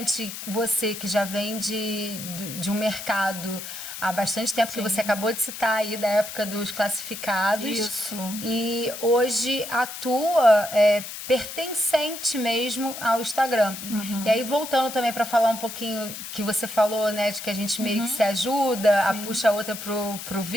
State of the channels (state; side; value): noise; left; hiss, 9 dB below the sound